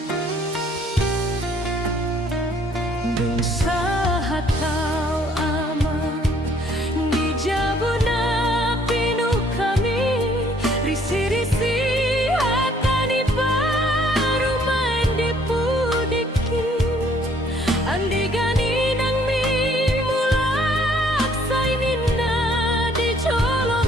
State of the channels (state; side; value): normal; both; correlation 0.62